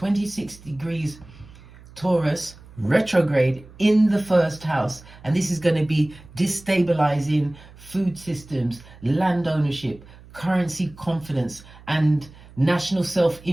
degrees Taurus retrograde in the first house. And this is going to be destabilizing food systems, land ownership, currency confidence, and national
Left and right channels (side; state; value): right; noise; hum, 21 dB below the sound